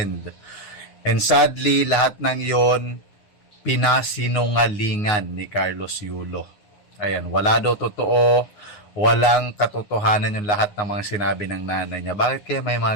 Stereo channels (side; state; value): right; late; 9.7 ms